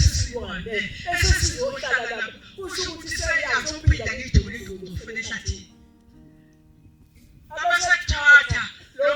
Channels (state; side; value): identical; both; correlation 1.00